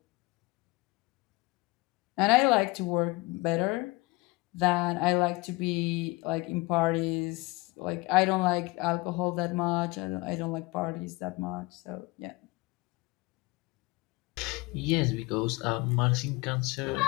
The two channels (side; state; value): right; quieter; 23.2 dB